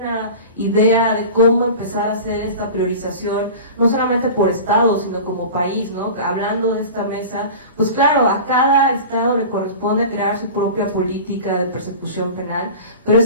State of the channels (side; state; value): both; inverted; correlation -0.34